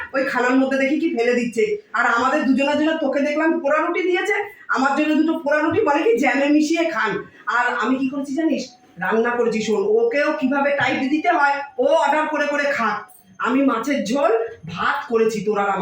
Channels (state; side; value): identical; both; correlation 1.00